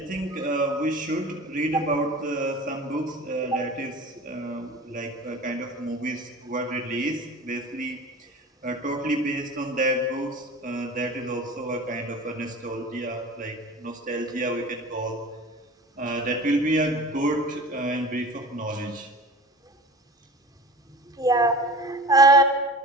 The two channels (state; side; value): normal; both; correlation 0.37